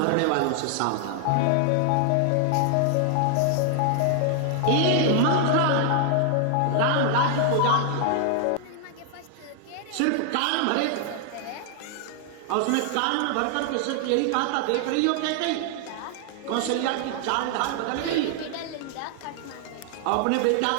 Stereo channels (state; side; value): different; both; correlation 0.00